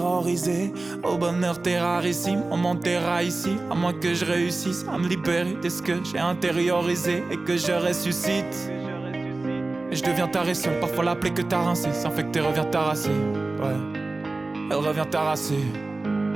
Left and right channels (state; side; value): quieter; left; 3.3 dB